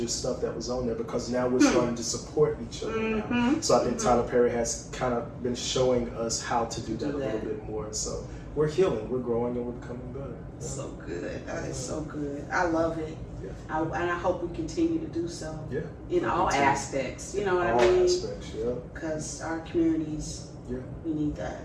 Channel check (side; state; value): both; identical; correlation 1.00